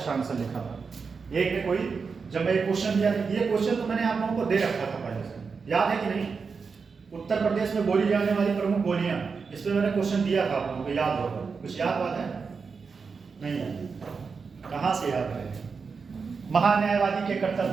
आंसर लिखा था। एक ने कोई, जब मैं क्वेश्चन दिया, ये क्वेश्चन तो मैंने आप लोगों को दे रखा था पहले से, याद है कि नहीं? उत्तर प्रदेश में बोली जाने वाली प्रमुख बोलियां, इस पर मैंने क्वेश्चन दिया था, आप लोगों को याद होगा। कुछ याद बात है? नहीं है, कहाँ से याद है? महान्यायवादी के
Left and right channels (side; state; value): left; quieter; 5.2 dB